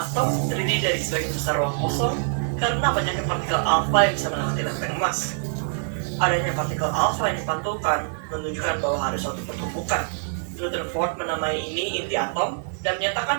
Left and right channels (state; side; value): silent; left; digital silence